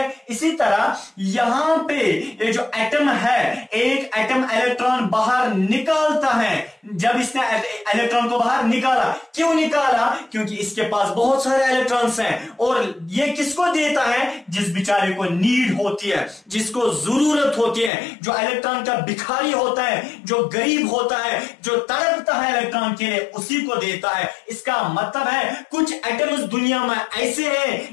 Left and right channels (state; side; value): drops out; right; at 17.9 s